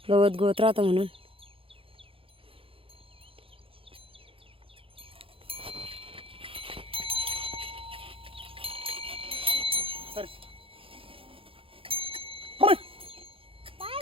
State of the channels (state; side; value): late; left; 0.27 ms